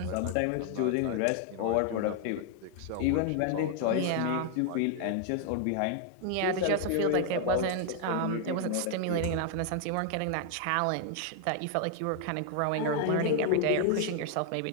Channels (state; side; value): different; both; correlation 0.00